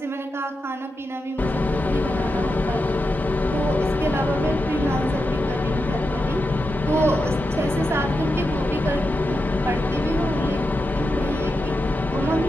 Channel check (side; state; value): both; normal; correlation 0.88